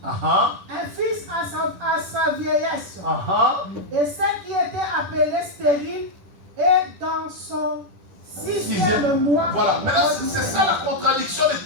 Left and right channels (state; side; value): late; left; 11 ms